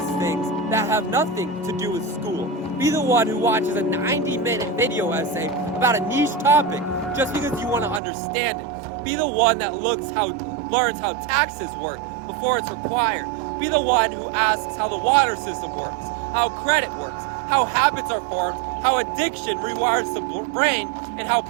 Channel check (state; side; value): drops out; left; at 8.0 s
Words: things that have nothing to do with school. Be the one who watches a 90-minute video essay about a niche topic just because you want to understand it. Be the one that learns how taxes work before it's required. Be the one who asks how the water system works, how credit works, how habits are formed, how addiction rewires the brain, and how